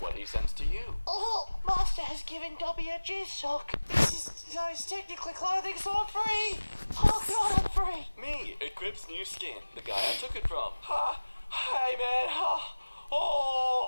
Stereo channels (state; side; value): inverted; both; correlation -1.00